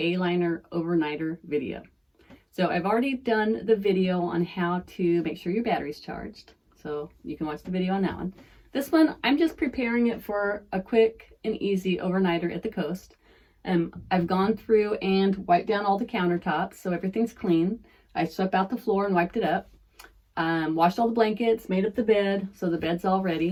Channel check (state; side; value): identical; both; correlation 1.00